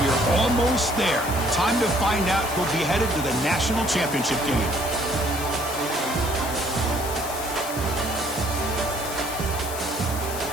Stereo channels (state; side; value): noise; left; hiss, 9 dB below the sound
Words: We are almost there. Time to find out who'll be headed to the national championship game.